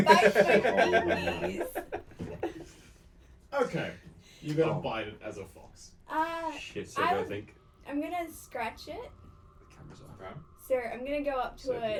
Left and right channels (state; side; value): identical; both; correlation 1.00